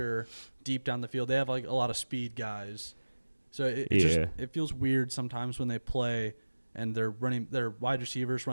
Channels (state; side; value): inverted; both; correlation -1.00